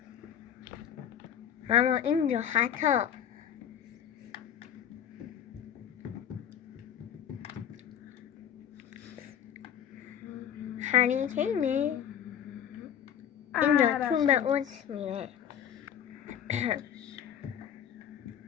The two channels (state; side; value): quieter; right; 9.3 dB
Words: اما اینجا خطا. هری کینه اینجا تو به اوت میره.